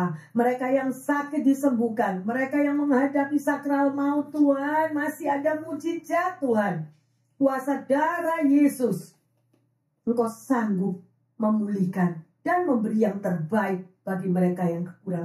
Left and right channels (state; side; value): identical; both; correlation 1.00